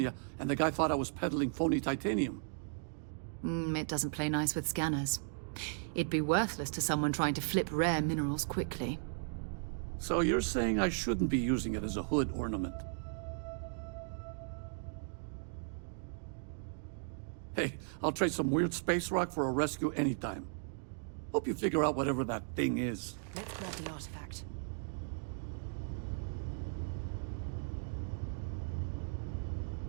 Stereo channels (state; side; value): silent; left; digital silence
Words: and the guy thought I was peddling phony titanium. It's it doesn't play nice with scanners. It'd be worthless to someone trying to flip rare minerals quickly. So you're saying I shouldn't be using it as a hood ornament? Hey, I'll trade some weird space rock for a rescue anytime. Hope you figure out whatever that thing is. Let's grab the artifact.